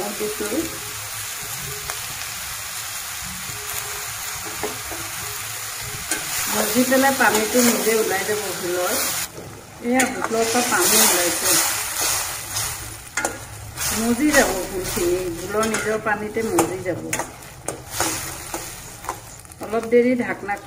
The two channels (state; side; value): identical; both; correlation 1.00